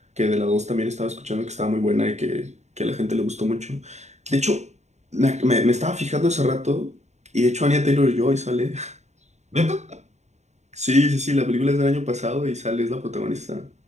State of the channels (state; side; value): late; left; 0.33 ms